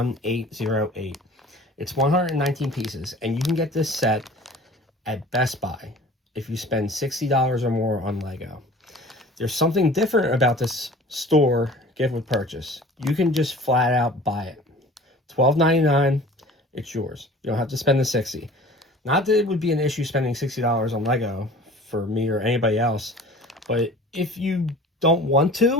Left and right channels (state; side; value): normal; both; correlation 0.44